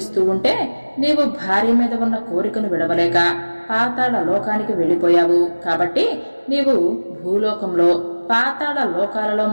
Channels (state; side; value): inverted; both; correlation -1.00